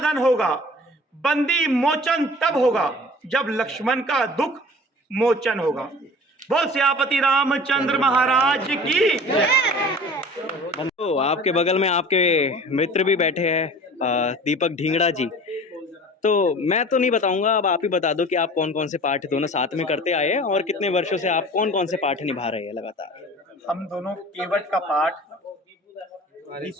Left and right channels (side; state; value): both; normal; correlation 0.42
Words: होगा, बंदी मोचन तब होगा जब लक्ष्मण का दुख मोचन होगा। बोल सियापति रामचंद्र महाराज की। तो आपके बगल में आपके मित्र भी बैठे हैं, दीपक ढींगड़ा जी। तो मैं तो नहीं बताऊंगा, अब आप ही बता दो कि आप कौन कौन से पाठ दोनों साथ में करते आए हैं और कितने वर्षों से आप कौन कौन से पाठ निभा रहे हैं लगातार। हम दोनों केवट का पाठ